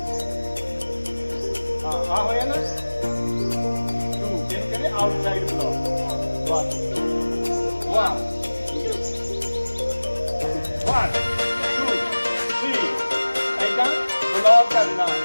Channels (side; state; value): both; inverted; correlation -1.00